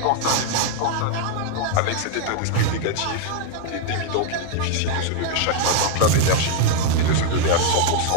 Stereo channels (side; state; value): both; different; correlation 0.00